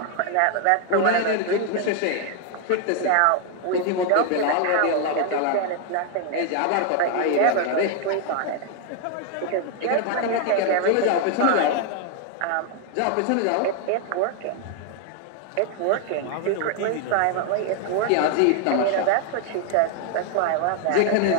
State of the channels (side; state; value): both; different; correlation 0.00